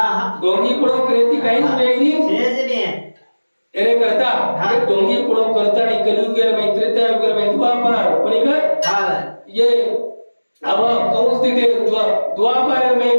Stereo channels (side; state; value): both; inverted; correlation -1.00